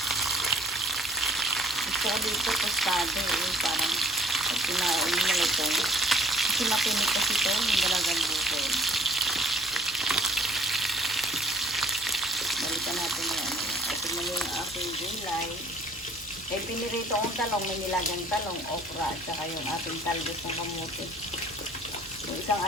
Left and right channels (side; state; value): right; noise; hum, 22 dB below the sound